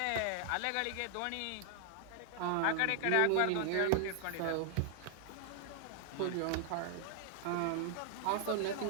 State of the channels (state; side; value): different; both; correlation 0.00